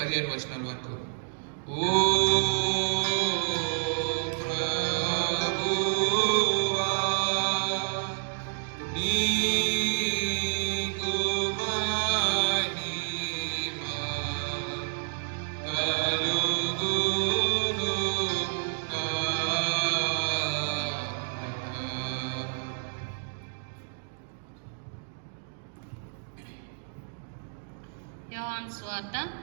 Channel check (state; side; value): silent; left; digital silence